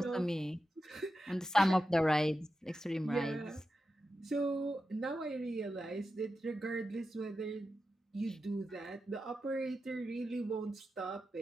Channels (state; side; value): normal; both; correlation 0.90